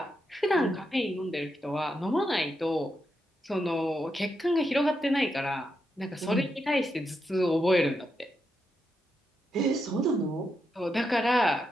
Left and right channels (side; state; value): both; normal; correlation 0.84